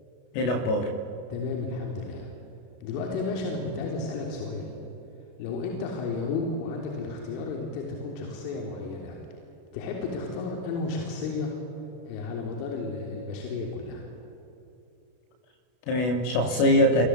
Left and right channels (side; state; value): right; late; 32 ms